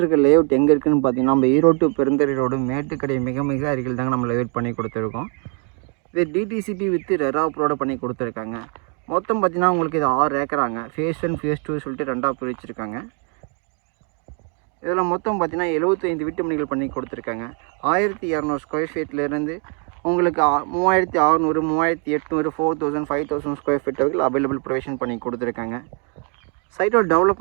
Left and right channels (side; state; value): left; quieter; 39.4 dB